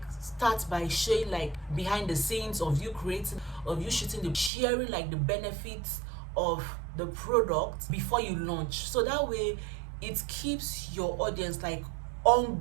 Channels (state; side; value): drops out; left; at 4.5 s